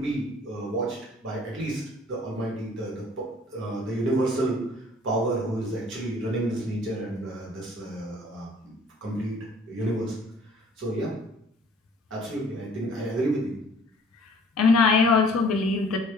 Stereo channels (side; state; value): both; normal; correlation 0.55